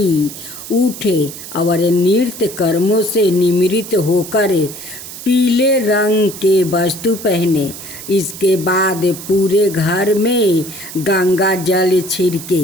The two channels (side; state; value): right; noise; hiss, 12 dB below the sound